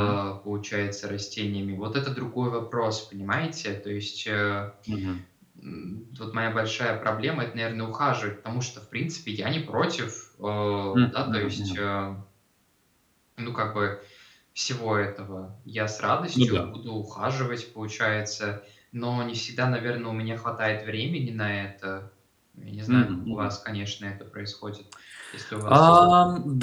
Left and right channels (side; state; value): both; identical; correlation 1.00